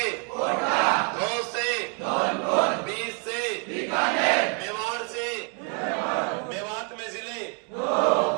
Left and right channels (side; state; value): left; quieter; 38.2 dB